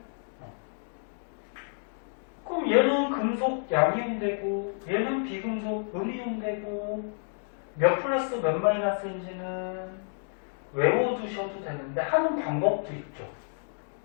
그럼 얘는 금속 양이온 되고 얘는 비금속 음이온 되고 몇 플러스 몇 마이너스인지는 외워두셔도 되는데 하는 방법도 있죠.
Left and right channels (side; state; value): right; silent; digital silence